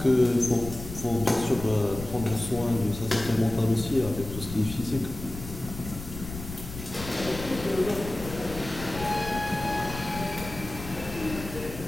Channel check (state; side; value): noise; left; rumble, 11 dB below the sound